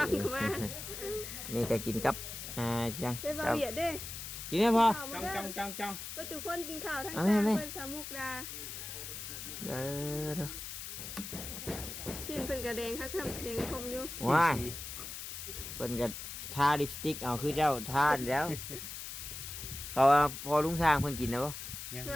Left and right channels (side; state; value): left; noise; hiss, 8 dB below the sound